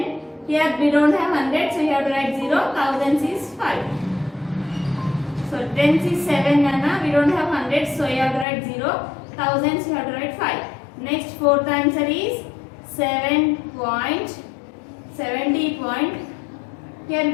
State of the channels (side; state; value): right; drops out; at 8.5 s